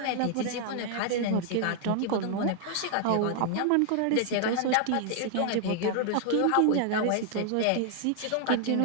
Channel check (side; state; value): both; different; correlation 0.00